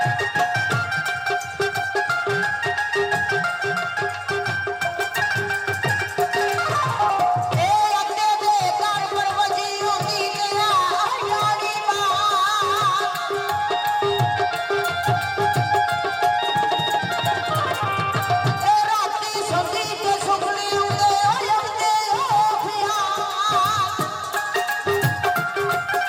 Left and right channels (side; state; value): both; identical; correlation 1.00